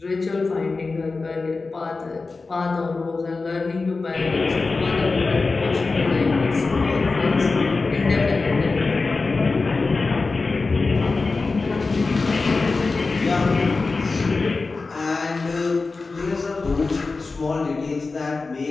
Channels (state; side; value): quieter; right; 3.9 dB